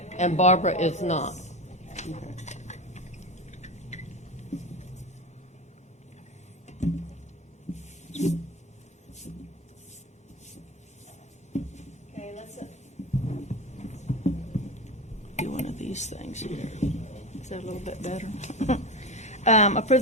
And Barbara is not. Okay, let's, Do one of these things here. is that a little bit better? Approve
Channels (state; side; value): normal; both; correlation 0.23